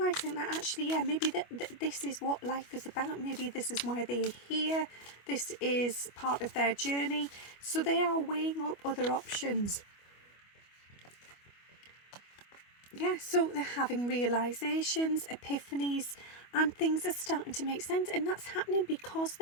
that actually, yeah, maybe this is what life is about. Maybe this is why they're here. This is part of their journey. So they are weighing up other options. Yeah, so they're having realizations, epiphanies, and things are starting to make sense. And that's happening because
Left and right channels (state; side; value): late; right; 25 ms